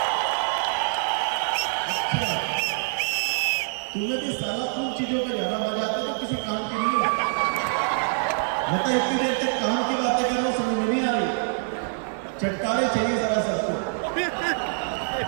तुम्हें भी साला उन चीजों का ज्यादा मजा आता है तो किसी काम के नहीं होता। मतलब इतनी देर तक काम की बातें करना समझ में नहीं आ रही, चटकारे चाहिए जरा सबको।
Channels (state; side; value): silent; left; 58 dB below the other